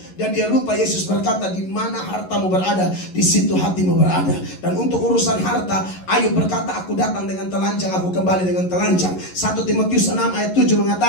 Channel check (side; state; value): right; late; 11 ms